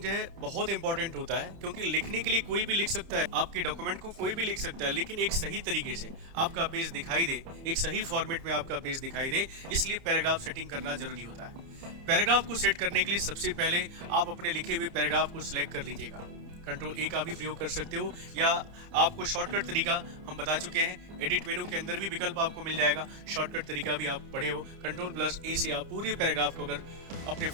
है बहुत इंपॉर्टेंट होता है, क्योंकि लिखने के लिए कोई भी लिख सकता है, आपके डॉक्यूमेंट को कोई भी लिख सकता है, लेकिन एक सही तरीके से आपका पेज दिखाई दे, एक सही फॉर्मेट में आपका पेज दिखाई दे, इसलिए पैराग्राफ सेटिंग करना जरूरी होता है। पैराग्राफ को सेट करने के लिए सबसे पहले आप अपने लिखे हुए पैराग्राफ को सिलेक्ट कर लीजिएगा। कंट्रोल ए का भी प्रयोग कर सकते हो, या आपको शॉर्टकट तरीका हम बता चुके हैं, एडिट मेनू के अंदर भी विकल्प आपको मिल जाएगा। शॉर्टकट तरीका भी आप पढ़े हो, कंट्रोल+A से आप पूरे पैराग्राफ को अगर अपने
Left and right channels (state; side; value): late; left; 30 ms